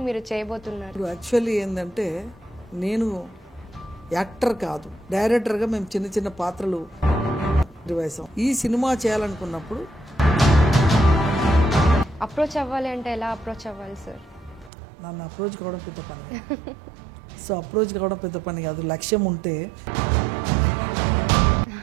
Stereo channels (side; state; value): left; drops out; at 14.7 s